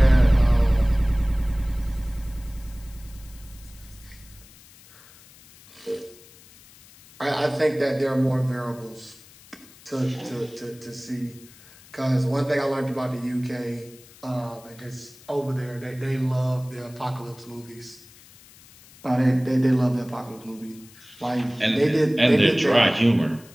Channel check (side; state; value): left; noise; hiss, 23 dB below the sound